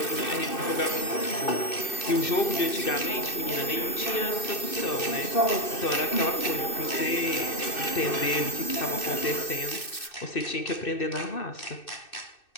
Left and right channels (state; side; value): late; right; 2.6 ms